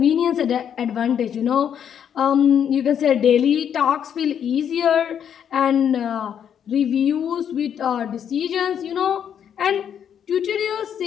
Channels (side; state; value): right; quieter; 8.7 dB